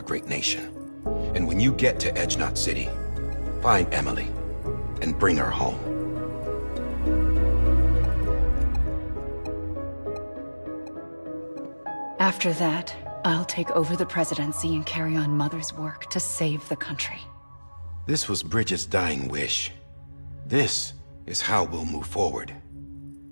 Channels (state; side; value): inverted; both; correlation -1.00